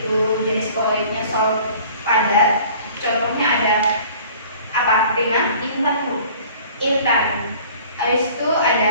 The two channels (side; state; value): both; inverted; correlation -0.49